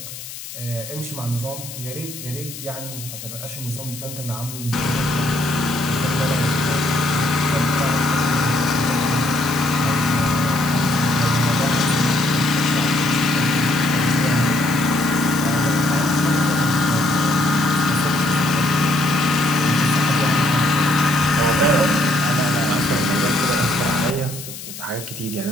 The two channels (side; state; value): left; noise; hiss, 12 dB below the sound